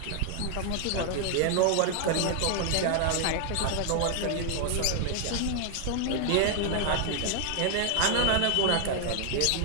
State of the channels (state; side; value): different; both; correlation 0.00